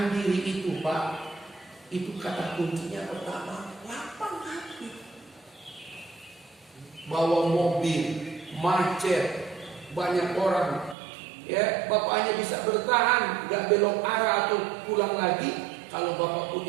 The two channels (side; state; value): left; drops out; at 11.0 s